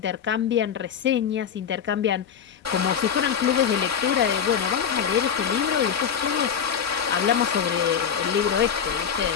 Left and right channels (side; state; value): right; quieter; 7.7 dB